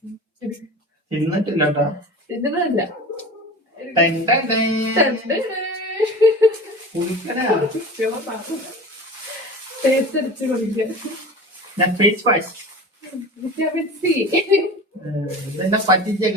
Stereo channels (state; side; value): normal; both; correlation 0.35